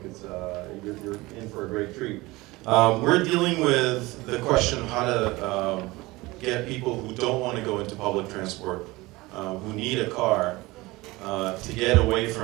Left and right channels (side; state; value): left; quieter; 21.1 dB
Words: it's you're in for a great treat. We're dealing with the question of how to get people who don't want to go into public transport, who need a car, to get away